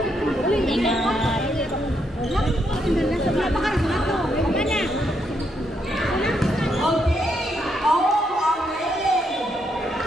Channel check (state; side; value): normal; both; correlation 0.77